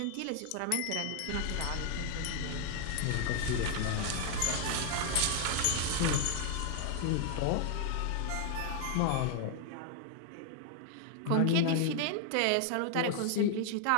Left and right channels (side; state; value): both; different; correlation 0.00